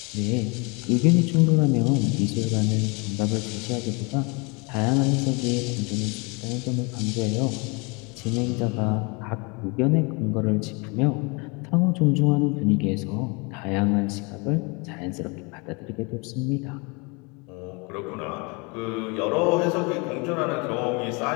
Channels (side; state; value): right; quieter; 30.0 dB